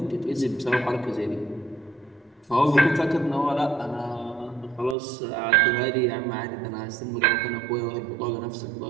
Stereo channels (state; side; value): drops out; left; at 5.0 s